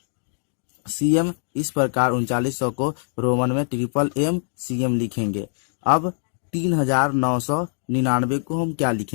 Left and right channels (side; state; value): right; silent; digital silence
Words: सी एम। इस प्रकार 3900 को रोमन में ट्रिपल एम सी एम लिखेंगे। अब 3999 को हम क्या